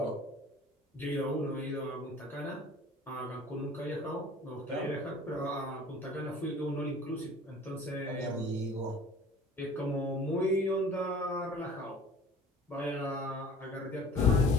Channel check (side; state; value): both; normal; correlation 0.46